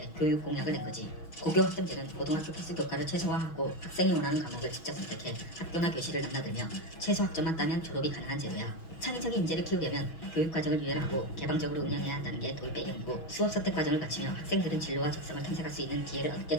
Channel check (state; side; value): late; right; 6.2 ms